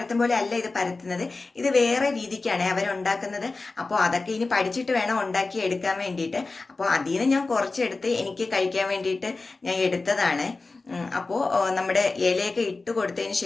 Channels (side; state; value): right; quieter; 3.6 dB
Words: പോലെ അല്ല ഇത് പരത്തുന്നത്, ഇത് വേറെ രീതിക്കാണ് അവരുണ്ടാക്കുന്നത്. അപ്പോൾ അതൊക്കെ ഇനി പഠിച്ചിട്ട് വേണം ഉണ്ടാക്കി എടുക്കാൻ വേണ്ടിയിട്ട്. അപ്പോൾ അതിൽ നിന്ന് ഞാൻ കുറച്ചെടുത്ത് എനിക്ക് കഴിക്കാൻ വേണ്ടിയിട്ട് ഞാൻ എടുത്തതാണ്. അപ്പോൾ നമ്മുടെ ഇലയൊക്കെ ഇട്ട് കൊടുത്തതിന്